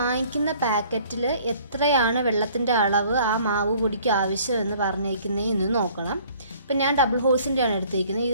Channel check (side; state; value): both; inverted; correlation -0.55